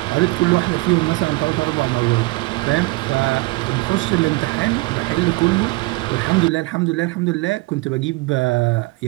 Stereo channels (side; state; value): left; quieter; 23.4 dB